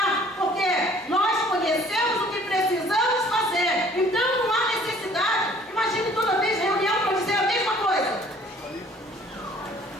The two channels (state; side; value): normal; both; correlation 0.55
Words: porque nós conhecemos o que precisamos fazer. Então não há necessidade. Imagine toda vez reunião para dizer a mesma coisa.